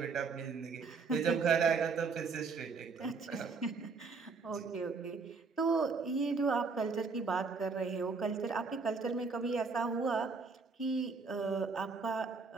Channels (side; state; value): left; quieter; 4.6 dB